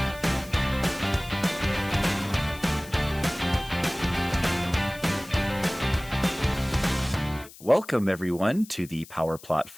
welcome, everyone, to the Power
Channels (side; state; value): left; noise; hiss, 19 dB below the sound